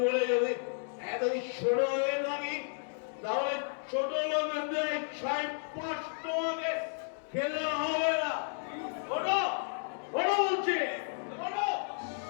বলে যদি এতই ছোট হয়ে থাকি, তাহলে ছোট লোকেদের ছাই পাঁচ তোমাকে খেলে হবে না। ওটা ওটা বলছি, ওটা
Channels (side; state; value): right; silent; digital silence